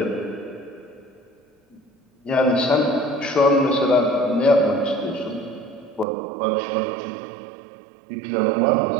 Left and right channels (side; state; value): left; drops out; at 6.1 s